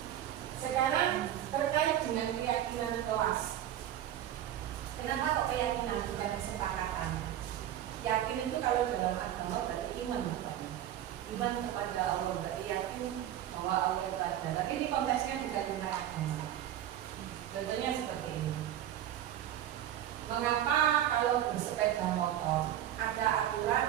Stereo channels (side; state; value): left; quieter; 11.6 dB